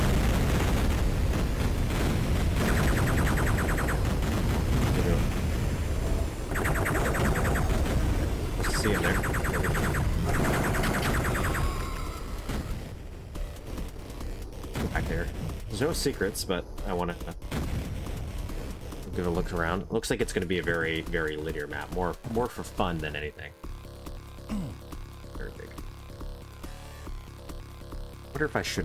Let's see in there. Back there. There's no secrets, but I want to give a look around. It looks like it's going to be a very, very linear map. More for fun than anything. Very big. Wonder if I should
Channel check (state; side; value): identical; both; correlation 1.00